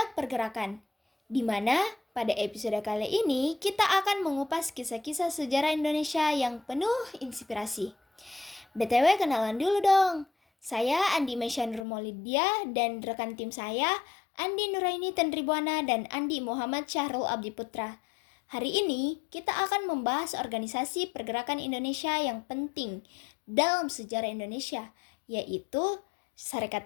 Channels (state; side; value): drops out; right; at 11.9 s